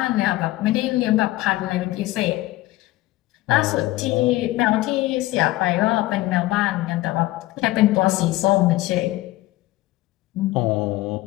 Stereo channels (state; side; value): quieter; right; 17.6 dB